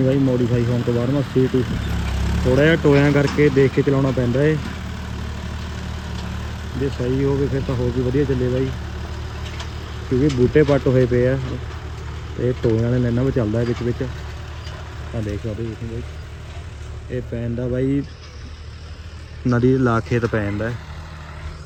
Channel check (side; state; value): both; identical; correlation 1.00